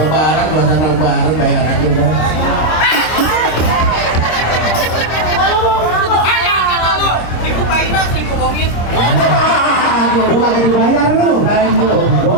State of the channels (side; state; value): right; late; 26 ms